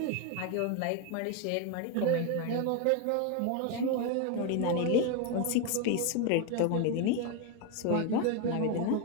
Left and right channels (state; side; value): different; both; correlation 0.02